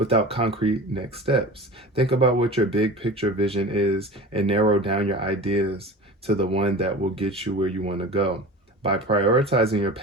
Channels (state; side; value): normal; both; correlation 0.35